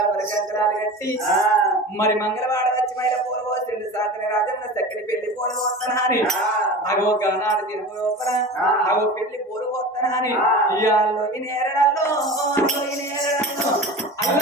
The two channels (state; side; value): normal; both; correlation 0.33